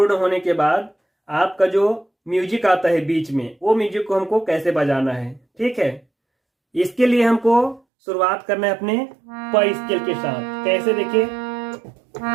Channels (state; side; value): drops out; left; at 7.8 s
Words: होने के बाद आपका जो म्यूजिक आता है बीच में, वो म्यूजिक को हमको कैसे बजाना है। ठीक है, इसके लिए हमको शुरुआत करना है अपने प स्केल के साथ। कैसे, देखिए,